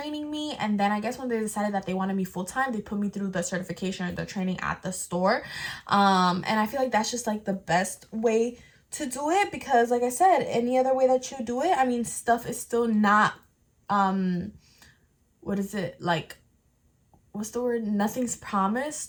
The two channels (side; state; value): both; identical; correlation 1.00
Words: me, and then I guess when they decided that they wanted me full-time, they put me through the certification or the training at the store. And I feel like that's just like the best way to do it, because like I said, any other way that you do it, I mean, stuff is still not what is it, like, what's the word, nothing's